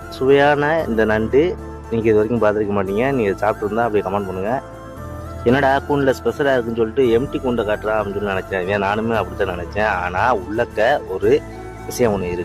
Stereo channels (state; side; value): identical; both; correlation 1.00